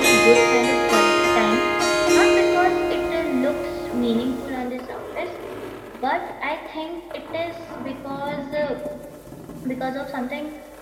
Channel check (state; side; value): identical; both; correlation 1.00